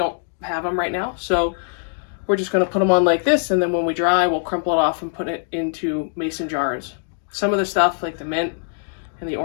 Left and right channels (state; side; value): silent; right; digital silence